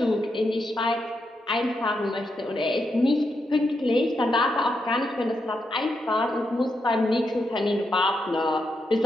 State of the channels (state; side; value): normal; both; correlation 0.83